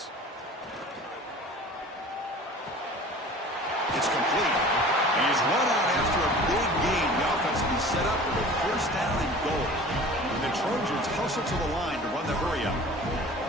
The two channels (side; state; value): both; normal; correlation 0.42